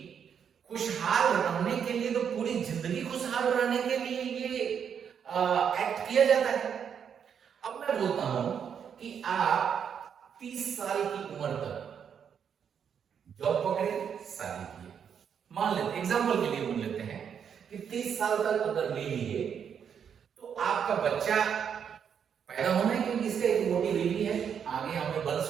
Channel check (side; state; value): left; quieter; 7.7 dB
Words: खुशहाल रहने के लिए, तो पूरी जिंदगी खुशहाल रहने के लिए ये एक्ट किया जाता है। अब मैं बोलता हूं कि आप 30 साल की उम्र तक जॉब पकड़े, शादी किए, मान लेते एग्जांपल के लिए मान लेते हैं कि 30 साल तक अगर ले लिए तो आपका बच्चा पैदा होना है, क्योंकि इसका एक मोटी बीवी है, आगे हमें